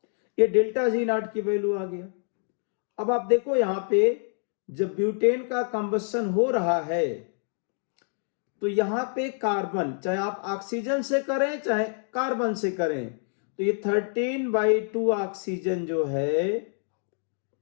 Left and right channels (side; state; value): right; silent; 60 dB below the other